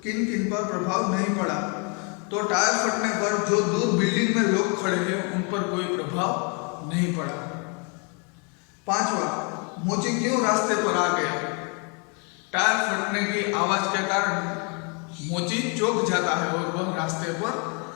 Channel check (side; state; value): right; quieter; 35.5 dB